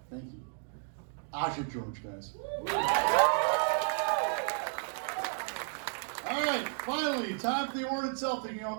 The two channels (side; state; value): left; silent; 56 dB below the other